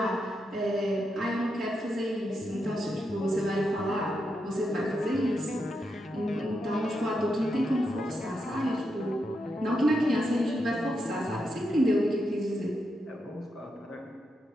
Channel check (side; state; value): both; normal; correlation 0.84